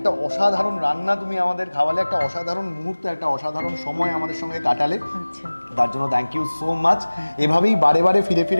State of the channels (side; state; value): both; inverted; correlation -1.00